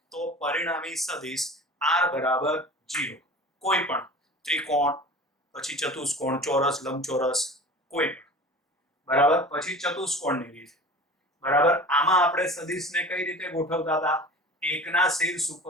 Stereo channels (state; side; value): normal; both; correlation 0.39